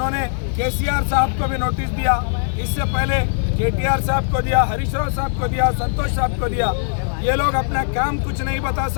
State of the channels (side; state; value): right; silent; digital silence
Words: केसीआर साहब को भी नोटिस दिया, इससे पहले केटीआर साहब को दिया, हरीश राव साहब को दिया, संतोष साहब को दिया। ये लोग अपना काम कुछ नहीं बता